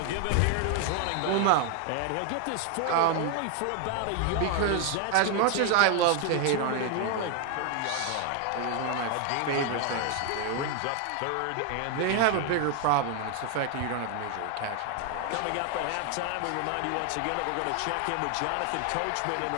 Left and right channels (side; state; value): both; different; correlation 0.01